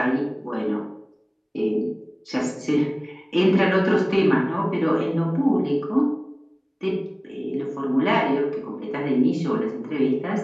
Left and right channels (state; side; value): identical; both; correlation 1.00